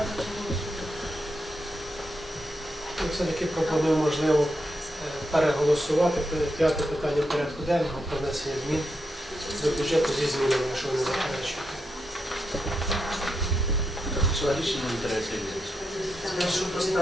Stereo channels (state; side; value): normal; both; correlation 0.84